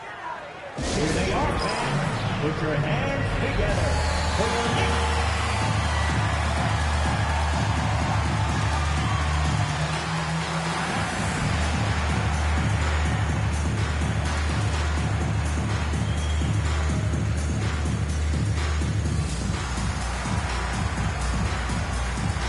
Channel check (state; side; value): identical; both; correlation 1.00